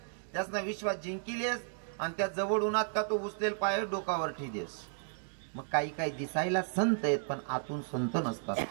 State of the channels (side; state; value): left; silent; digital silence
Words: त्यासना विश्वास जिंकिलेस आणि त्या जवळ उन्हात का तो उचलेल पाय डोकावर ठेदेस. मग काही दिसायला संत आहेत पण आतून संत नसतात,